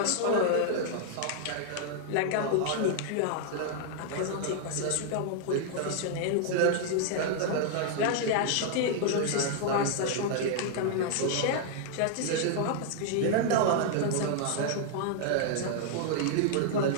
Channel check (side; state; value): both; different; correlation -0.01